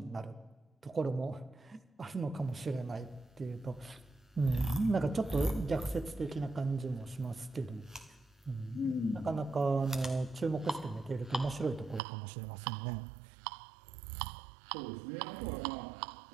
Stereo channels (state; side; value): drops out; left; at 12.0 s